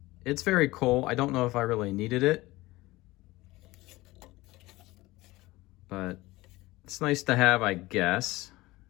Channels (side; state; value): right; quieter; 19.6 dB